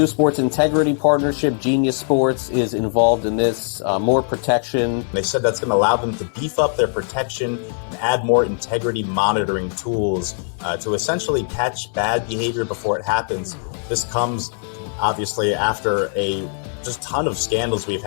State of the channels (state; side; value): silent; right; 57 dB below the other